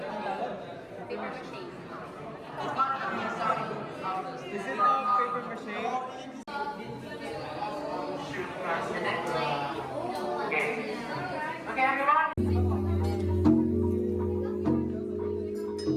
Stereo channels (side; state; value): both; identical; correlation 1.00